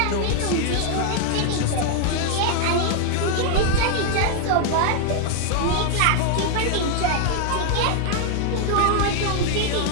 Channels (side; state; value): both; different; correlation 0.00